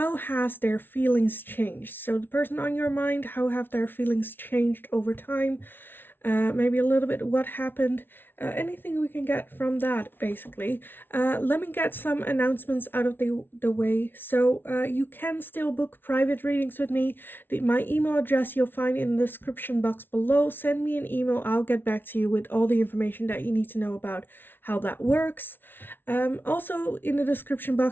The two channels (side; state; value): right; late; 0.10 ms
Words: has their feelings changed? So the person on your mind, how have their feelings changed over time? Maybe a little bit what happened, anything we can get from that basically. Let me get some announcements out of the way. So you can still book private readings with me. My email address you'll find in the description box below. Send me an email, I'll get back to you with all the information that you need to know about how that works. Also in the description